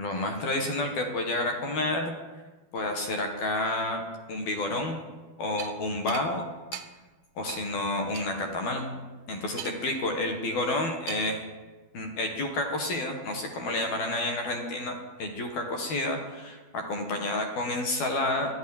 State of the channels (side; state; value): right; late; 12 ms